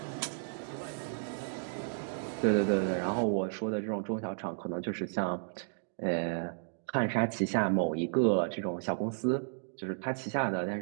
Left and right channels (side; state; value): left; silent; digital silence